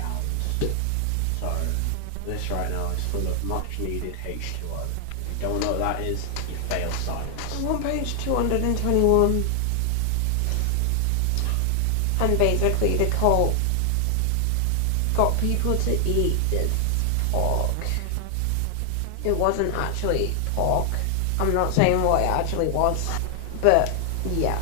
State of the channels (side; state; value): both; different; correlation 0.00